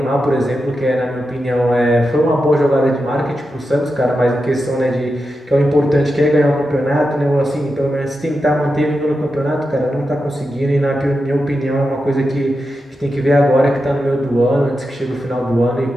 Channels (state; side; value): normal; both; correlation 0.89